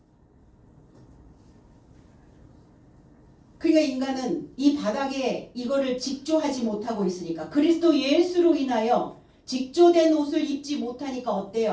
그러니까 인간은 이 바닥에 이거를 직조하지 못하고 있으니까, 그리스도 예수로 인하여 직조된 옷을 입지 못하니까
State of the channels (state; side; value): identical; both; correlation 1.00